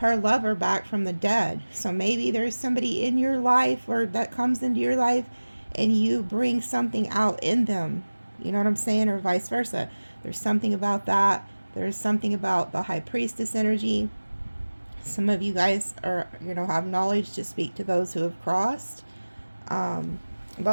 lover back from the dead. So maybe there's somebody in your life, or that comes into your life, and you bring something out in them. You know what I'm saying? Or vice versa. There's something about that. There's something about the high priestess energy. Some of you guys are, you know, have knowledge to speak to those who have crossed.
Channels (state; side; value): inverted; both; correlation -1.00